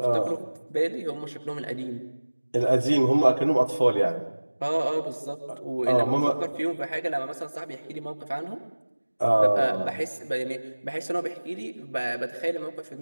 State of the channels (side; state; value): both; inverted; correlation -1.00